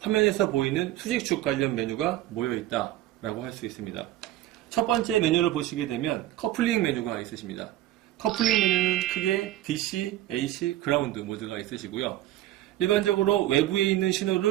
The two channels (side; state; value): left; quieter; 14.3 dB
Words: 보이는 수직축 관련 메뉴가 모여있다라고 할 수 있습니다. 첫 번째 메뉴를 보시게 되면 커플링 메뉴가 있으십니다. 커플링 메뉴는 크게 DC, AC, 그라운드 모드가 있으시고요. 일반적으로 외부에 있는